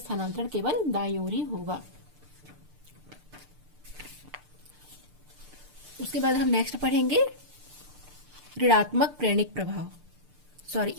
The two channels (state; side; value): late; left; 6.7 ms